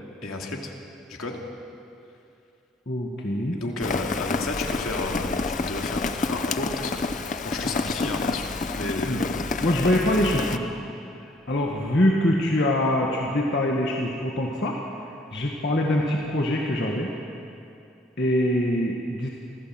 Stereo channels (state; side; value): normal; both; correlation 0.61